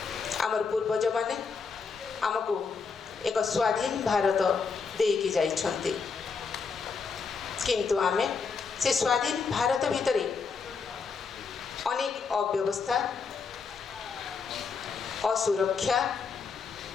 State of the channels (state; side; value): quieter; right; 5.2 dB